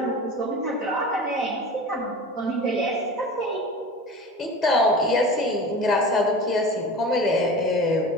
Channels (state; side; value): normal; both; correlation 0.35